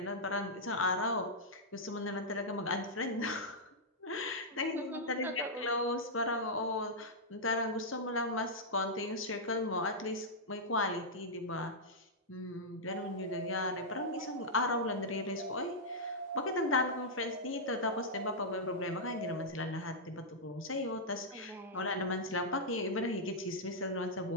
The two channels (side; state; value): both; normal; correlation -0.09